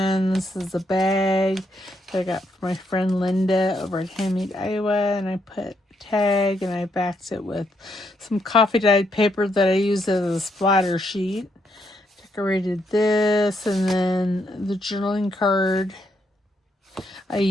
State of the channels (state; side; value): normal; both; correlation 0.76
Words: This is a bag that I got from my friend Linda over at Handmade Iowa, and I put a tag and I backed it with some coffee dyed paper that I used as a splatter sheet. Decorated this, and then the journaling card I